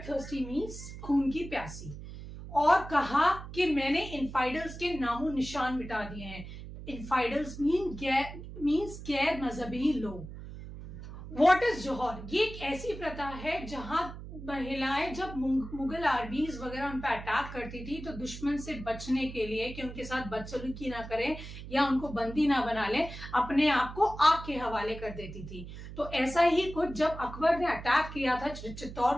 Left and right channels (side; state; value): right; noise; hum, 12 dB below the sound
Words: थर्स्टी मीन्स खून की प्यासी, और कहा कि मैंने इनफाइडल्स के नामो निशान मिटा दिए हैं। इनफाइडल्स मीन्स गैर मजहबी लोग। व्हाट इज जौहर? ये एक ऐसी प्रथा है जहां महिलाएं जब मुगल आर्मीज वगैरह उन पर अटैक करती थी तो दुश्मन से बचने के लिए कि उनके साथ बदसलूकी ना करें या उनको बंदी ना बना लें, अपने आप को आग के हवाले कर देती थी। तो ऐसा ही कुछ जब अकबर ने अटैक किया था